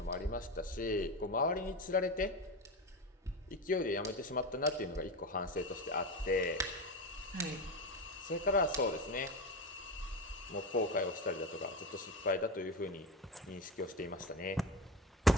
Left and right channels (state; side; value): normal; both; correlation 0.22